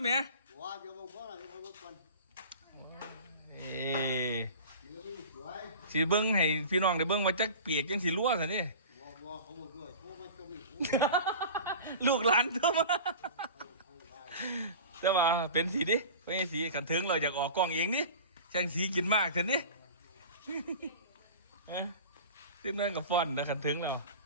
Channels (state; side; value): inverted; both; correlation -0.37